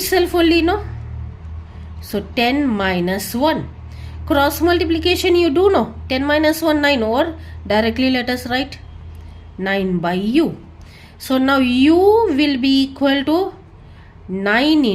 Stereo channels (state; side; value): identical; both; correlation 1.00